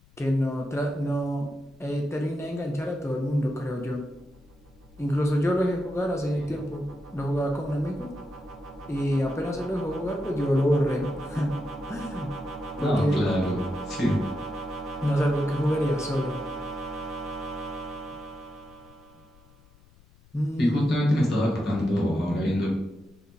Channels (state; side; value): noise; left; rumble, 28 dB below the sound